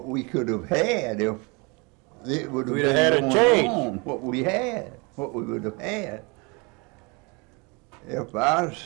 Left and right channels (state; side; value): quieter; left; 29.3 dB